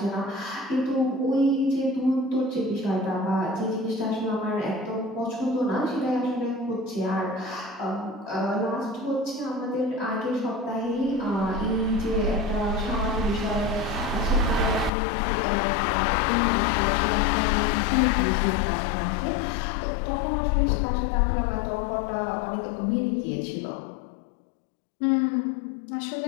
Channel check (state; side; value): drops out; right; at 14.9 s